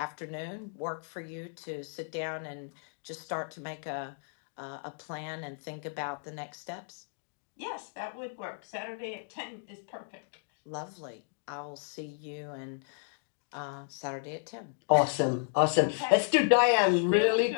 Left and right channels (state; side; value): silent; right; digital silence